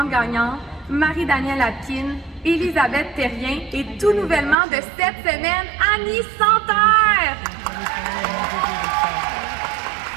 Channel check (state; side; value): drops out; left; at 4.5 s